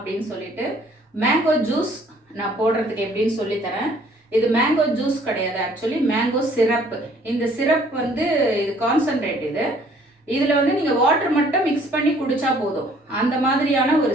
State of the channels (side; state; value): both; normal; correlation 0.58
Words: சொல்லிட்டு மேங்கோ ஜூஸ் நான் போடுறதுக்கு எப்படின்னு சொல்லித்தரேன். இது மேங்கோ ஜூஸ் கிடையாது, ஆக்சுவலி மேங்கோ சிரப். இந்த சிரப் வந்து இது கான்சன்ட்ரேட். இதில் வந்து நீங்கள் வாட்டர் மட்டும் மிக்ஸ் பண்ணி குடிச்சா போதும், அந்த மாதிரியான